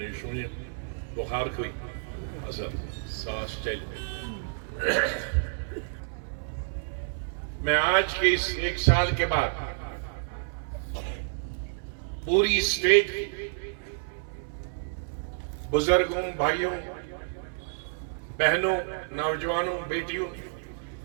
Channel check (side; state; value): left; silent; 58 dB below the other